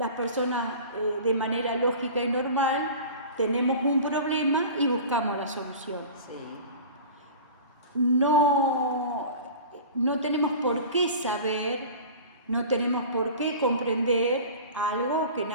personas de manera lógica y normal tenemos un problema y buscamos la solución. No tenemos por qué saber, no tenemos por qué comprender algo que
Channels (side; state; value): both; inverted; correlation -0.38